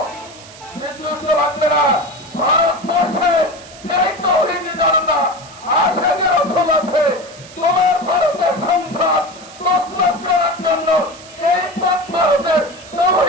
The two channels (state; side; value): noise; right; hiss, 19 dB below the sound